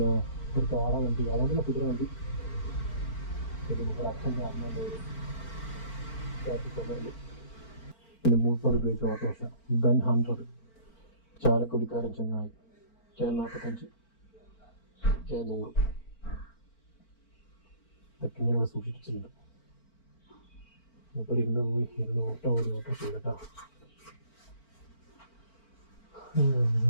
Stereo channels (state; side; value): late; right; 4.4 ms